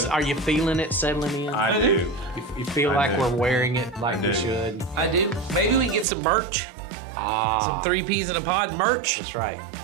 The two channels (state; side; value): drops out; left; at 6.1 s